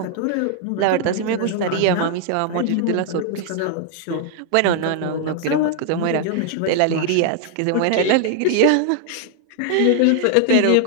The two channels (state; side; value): different; both; correlation 0.00